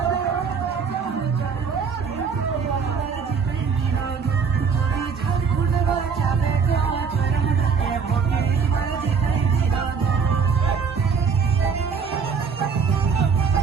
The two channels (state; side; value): quieter; left; 5.8 dB